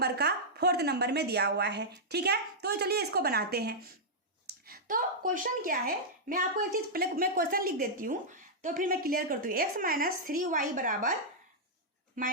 का 4th नंबर में दिया हुआ है। ठीक है, तो चलिए इसको बनाते हैं। तो क्वेश्चन क्या है, मैं आपको एक चीज पहले मैं क्वेश्चन लिख देती हूँ तो फिर मैं क्लियर करती हूँ। x माइनस 3y बराबर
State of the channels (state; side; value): normal; both; correlation -0.08